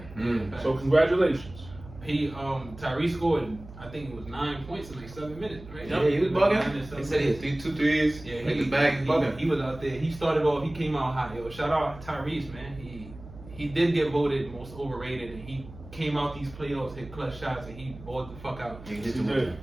So congratulations. Tyrese scored, I think it was 9 points in like 7 minutes, right? Yeah, he was bugging. He said he had 2 threes. Yeah, he was back bugging. He was out there. He started off. He came out hot. Yo, shout out Tyrese, man. He did get voted most overrated, and he came out these playoffs, hit clutch shots, and he balled the fuck out. He did the work.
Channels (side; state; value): right; noise; hum, 17 dB below the sound